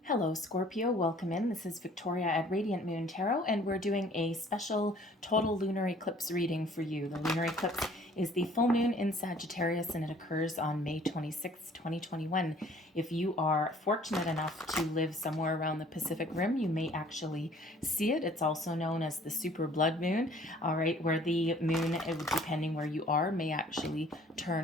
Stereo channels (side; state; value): both; normal; correlation 0.54